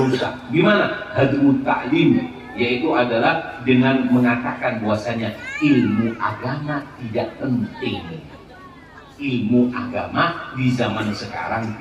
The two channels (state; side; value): identical; both; correlation 1.00